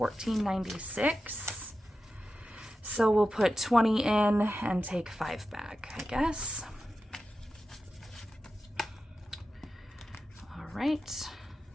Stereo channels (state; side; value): normal; both; correlation 0.92